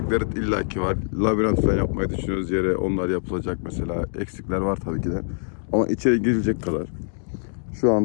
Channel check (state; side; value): silent; right; digital silence